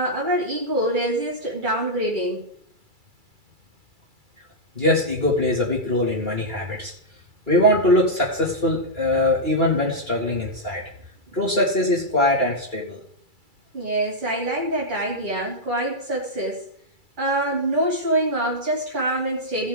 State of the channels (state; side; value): late; left; 2.3 ms